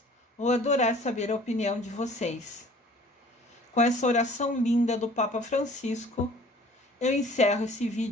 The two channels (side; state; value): both; normal; correlation 0.50